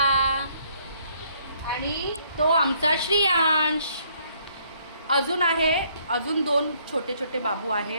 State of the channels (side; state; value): both; inverted; correlation -0.66